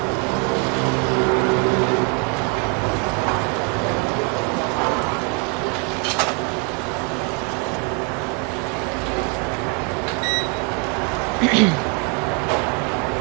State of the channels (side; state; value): left; quieter; 35.0 dB